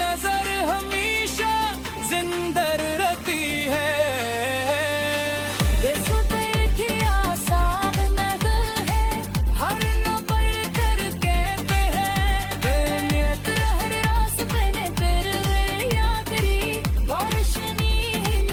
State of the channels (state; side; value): identical; both; correlation 1.00